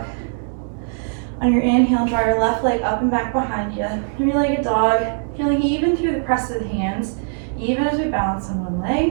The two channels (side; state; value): left; silent; digital silence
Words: On your inhale, draw your left leg up and back behind you. 3-legged dog, feeling even through the press of the hands, even as we balance on one